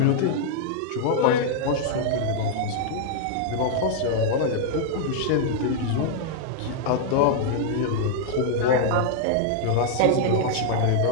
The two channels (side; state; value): both; different; correlation -0.01